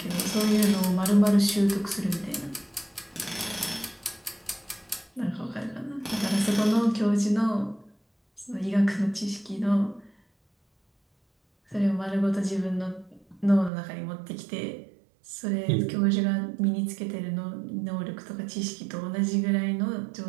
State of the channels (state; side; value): drops out; left; at 13.7 s